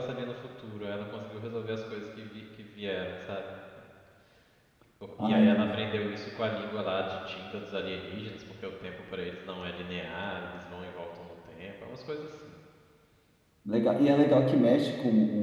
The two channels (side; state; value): both; identical; correlation 1.00